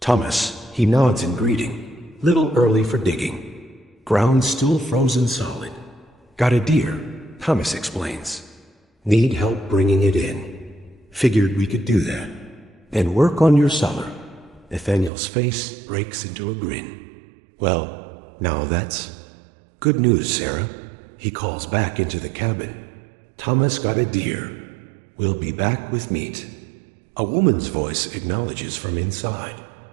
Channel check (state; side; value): drops out; left; at 15.1 s